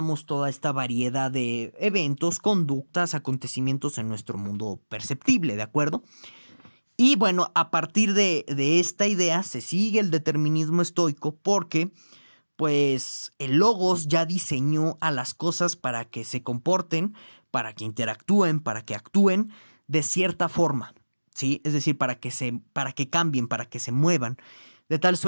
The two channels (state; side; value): inverted; both; correlation -1.00